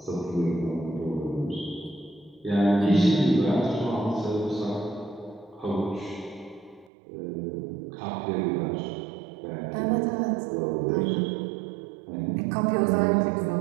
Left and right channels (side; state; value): left; drops out; at 6.9 s